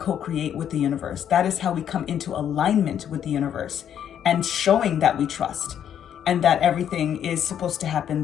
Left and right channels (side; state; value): right; quieter; 9.4 dB